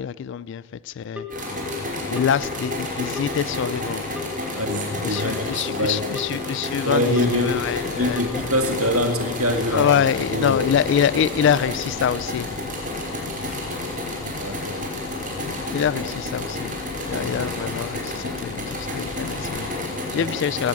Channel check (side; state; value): right; quieter; 4.3 dB